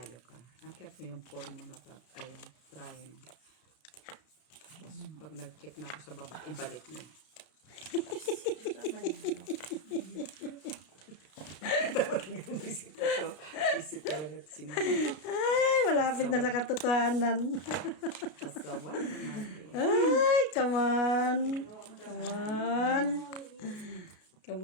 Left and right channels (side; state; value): right; late; 33 ms